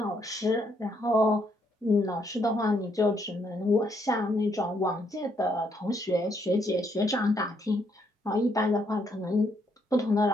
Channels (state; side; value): normal; both; correlation 0.73